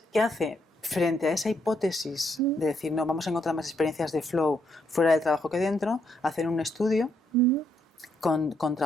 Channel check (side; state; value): both; normal; correlation 0.75